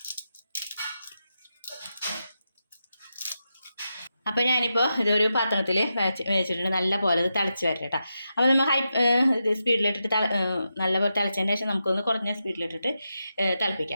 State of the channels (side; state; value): both; inverted; correlation -0.88